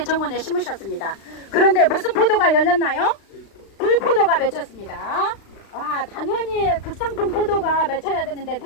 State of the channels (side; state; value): right; late; 35 ms